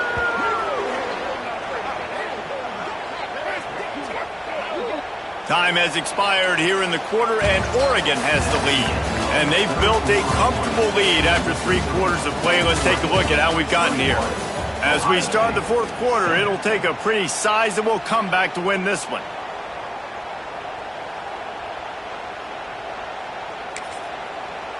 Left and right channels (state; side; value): identical; both; correlation 1.00